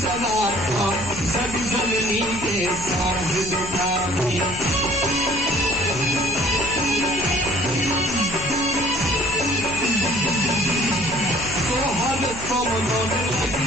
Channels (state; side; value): noise; left; hum, 13 dB below the sound